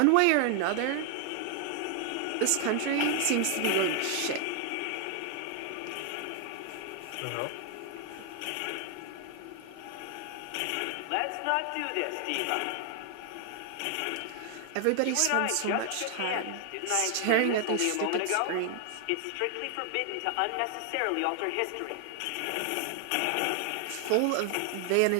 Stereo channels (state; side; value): different; both; correlation 0.00